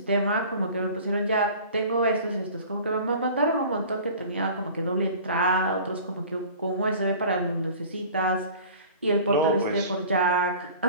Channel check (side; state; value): both; inverted; correlation -0.43